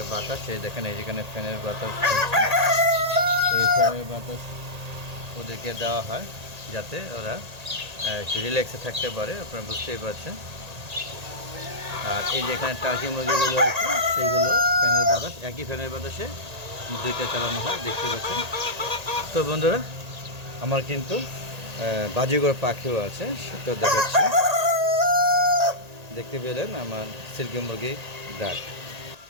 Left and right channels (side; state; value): left; late; 1.8 ms